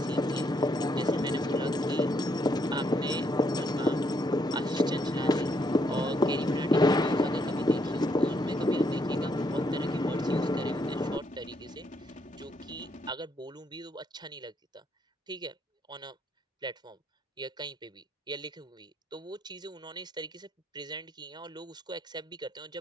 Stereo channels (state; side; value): normal; both; correlation 0.73